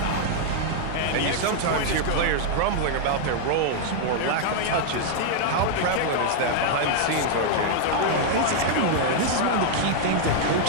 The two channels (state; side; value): different; both; correlation -0.01